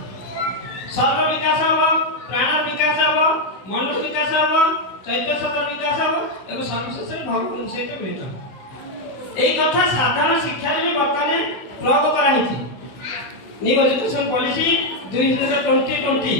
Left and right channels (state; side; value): late; right; 16 ms